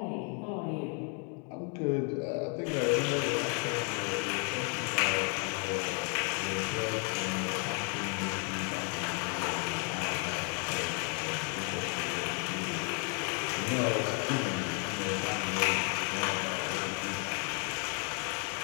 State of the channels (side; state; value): right; quieter; 38.5 dB